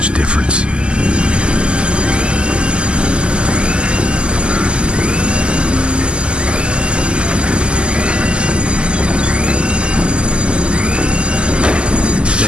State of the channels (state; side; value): late; left; 0.050 ms